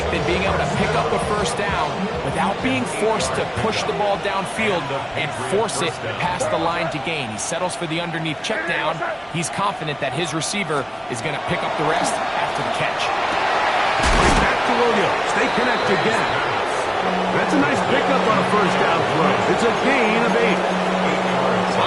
than being able to pick up a first down without being forced to push the ball downfield and force it past the line to gain. He settles for the underneath check down. He's confident that his receiver is going to pick up the rest after the catch. Back to Williams. They connect again. That's a nice pickup on a first down throw. It's a gain of 8.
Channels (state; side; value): identical; both; correlation 1.00